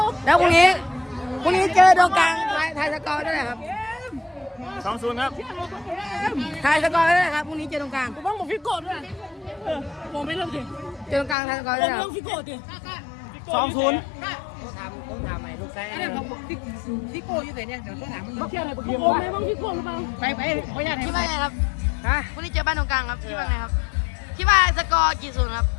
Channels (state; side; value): drops out; right; at 11.4 s